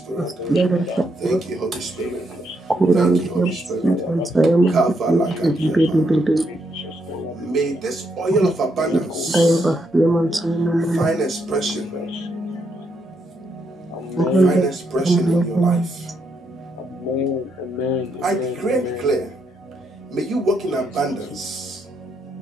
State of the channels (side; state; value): both; normal; correlation 0.77